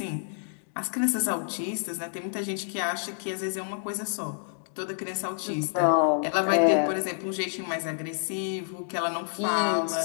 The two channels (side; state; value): right; silent; 59 dB below the other